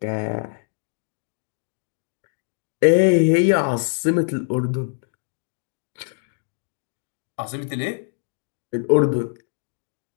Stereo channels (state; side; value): silent; right; 60 dB below the other